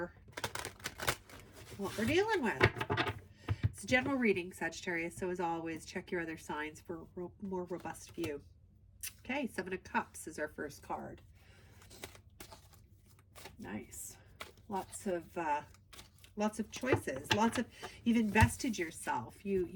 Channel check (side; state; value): both; identical; correlation 1.00